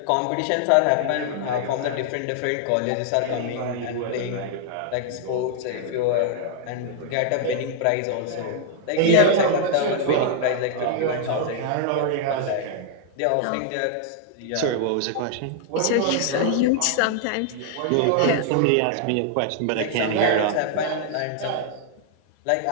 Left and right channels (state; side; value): different; both; correlation 0.00